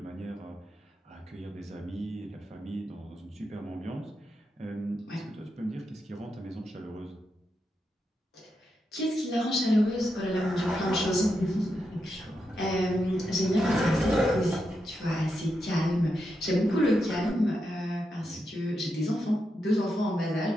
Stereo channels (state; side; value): normal; both; correlation 0.85